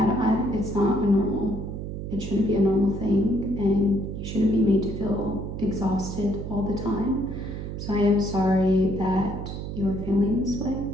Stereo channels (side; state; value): right; noise; hum, 6 dB below the sound